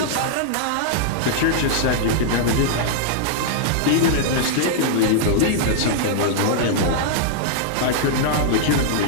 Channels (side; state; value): both; different; correlation -0.01